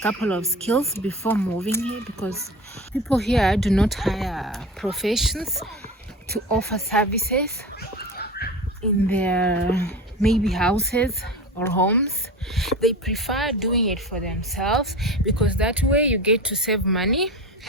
couple of skills before moving here, because people here do not hire professions to offer services in their maybe houses or homes. They prefer doing it for themselves, because that way you get to save money.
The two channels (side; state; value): both; normal; correlation 0.31